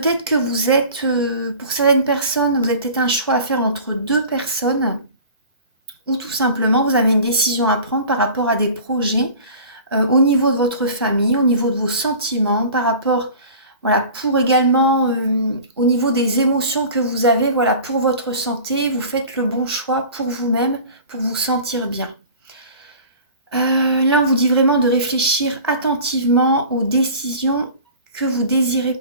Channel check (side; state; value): both; inverted; correlation -0.41